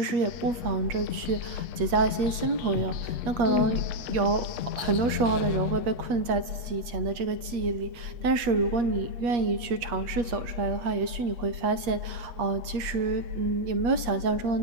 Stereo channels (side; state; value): left; late; 8.4 ms